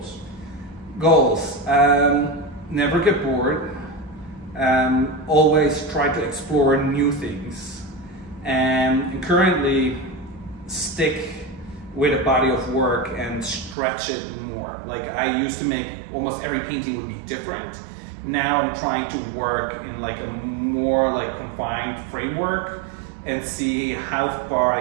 Goals. Never get bored. Always try to explore new things. And currently stick with a body of work and stretch it more. Like I used to make almost every painting would be different. Now I'm trying to work in like a more like confined framework and see how far I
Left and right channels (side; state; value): left; drops out; at 13.8 s